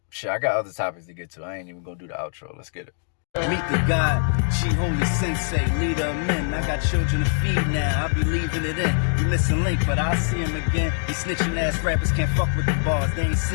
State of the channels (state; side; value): silent; right; digital silence